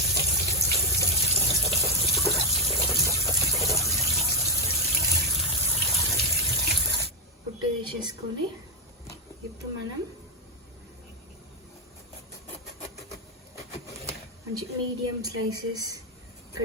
పుట్టు తీసేసుకొని ఇప్పుడు మనం మంచి మీడియం స్లైసెస్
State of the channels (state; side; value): normal; both; correlation 0.05